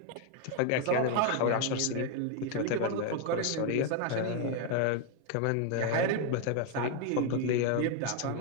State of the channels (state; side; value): different; both; correlation 0.01